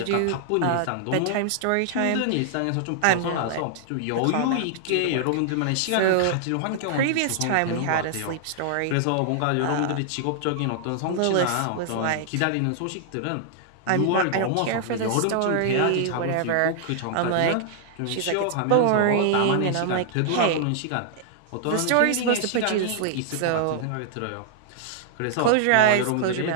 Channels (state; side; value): different; both; correlation -0.01